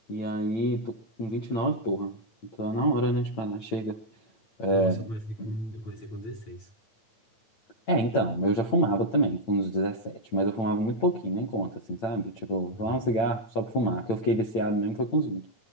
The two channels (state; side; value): late; right; 8.9 ms